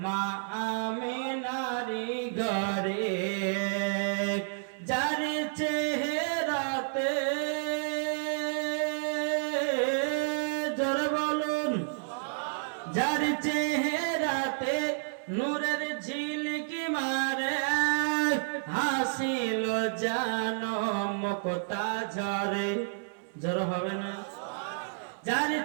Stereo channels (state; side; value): silent; left; digital silence